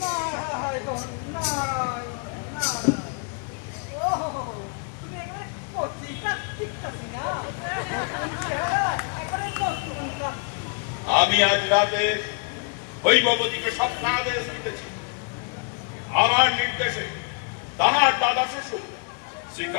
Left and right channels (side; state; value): right; quieter; 36.1 dB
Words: নারায়ণ নারায়ণ নারায়ণ, ওহো, তুমি এখানে পত্রিকা টিকতাছি না, এখানে পত্রিকা। আমি আজ রাতে হৈমবতীকে স্বপ্নাদেশ দিতেছি। আমার নির্দেশে তাহার দাদা শ্বশুর শ্রী